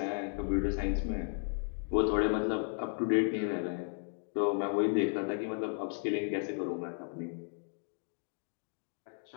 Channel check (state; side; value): silent; right; 55 dB below the other